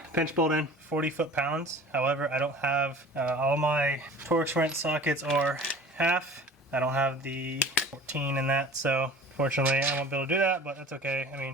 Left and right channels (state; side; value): normal; both; correlation 0.42